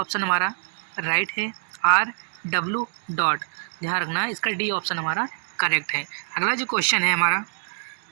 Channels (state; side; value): silent; left; digital silence